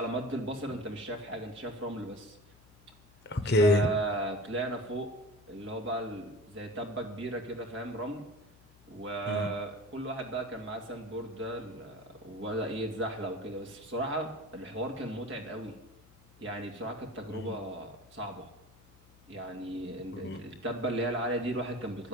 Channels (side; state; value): left; noise; hum, 25 dB below the sound